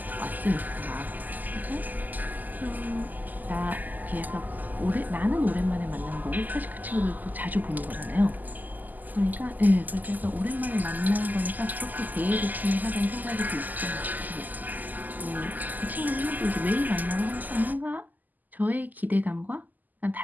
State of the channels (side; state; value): left; late; 0.083 ms